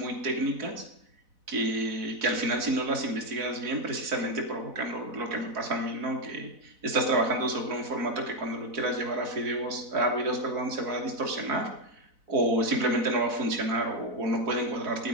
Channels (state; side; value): late; left; 4.0 ms